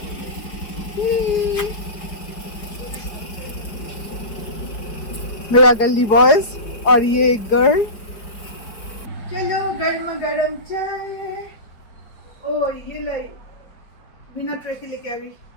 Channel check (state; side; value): late; right; 5.2 ms